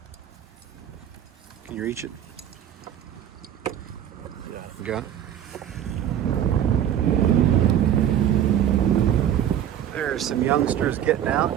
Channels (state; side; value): quieter; left; 10.4 dB